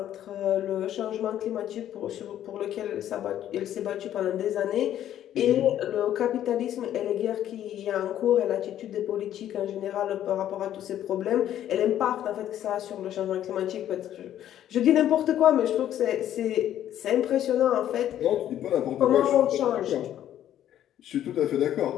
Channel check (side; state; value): right; quieter; 11.4 dB